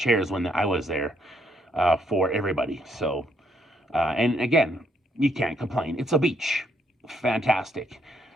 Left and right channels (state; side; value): normal; both; correlation 0.72